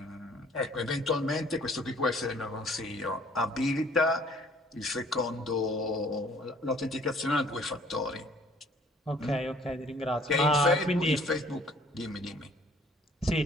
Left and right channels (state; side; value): normal; both; correlation 0.57